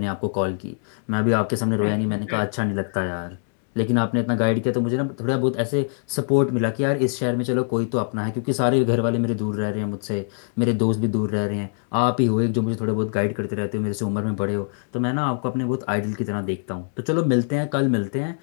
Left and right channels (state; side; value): silent; right; digital silence